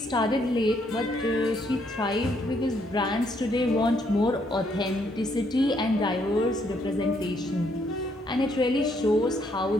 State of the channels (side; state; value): both; normal; correlation 0.71